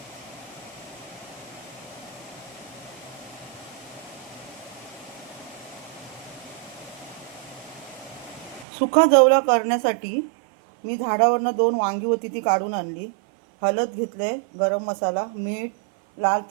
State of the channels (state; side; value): drops out; left; at 8.7 s